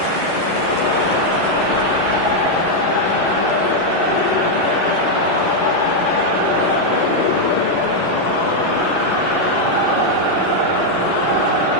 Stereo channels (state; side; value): late; right; 11 ms